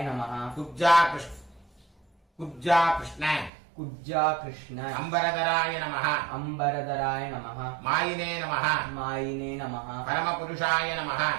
नमः कुब्जा कृष्ण कुब्जा कृष्ण अंबरधराय नमः अंबरधराय नमः मायिने नमः मायिने नमः परमपुरुषाय नमः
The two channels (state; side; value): drops out; left; at 3.5 s